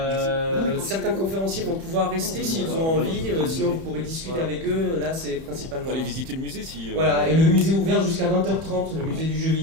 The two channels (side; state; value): left; late; 31 ms